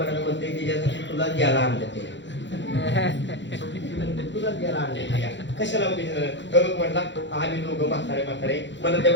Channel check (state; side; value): late; right; 0.53 ms